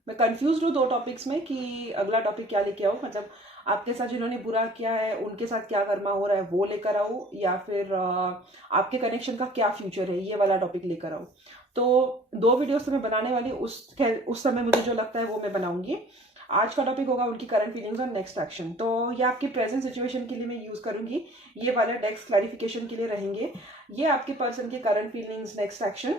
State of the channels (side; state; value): both; normal; correlation 0.50